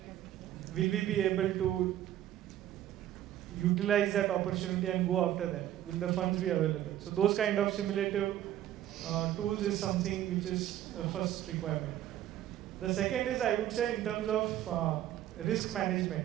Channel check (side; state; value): left; quieter; 12.4 dB